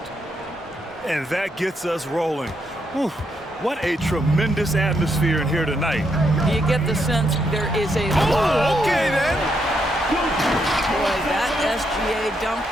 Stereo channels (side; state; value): both; normal; correlation 0.78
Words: And that gets us rolling. Whew, what a tremendous atmosphere in here tonight. You get the sense there is a... Oh, okay then. Boy, that SGA dunk